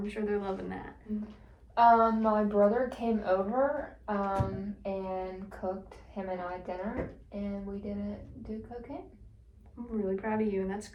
sure they're loving that. My brother came over, and cooked him and I dinner, and we didn't do cocaine. I'm really proud of you, and that's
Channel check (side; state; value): both; identical; correlation 1.00